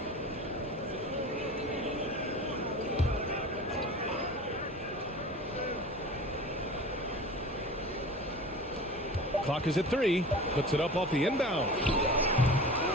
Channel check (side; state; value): both; normal; correlation 0.37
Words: Clock is at 3. Puts it up off the inbound.